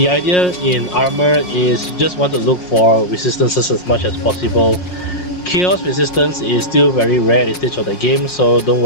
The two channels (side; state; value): right; late; 5.5 ms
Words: idea in armor is you just want to look for resistances as much as possible. Chaos resistance is still very rare at this stage of the game, so don't